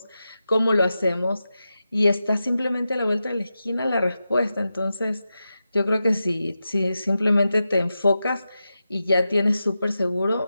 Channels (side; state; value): both; inverted; correlation -0.91